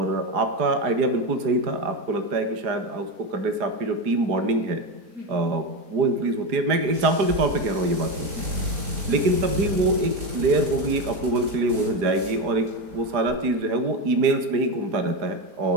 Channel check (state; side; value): late; left; 4.8 ms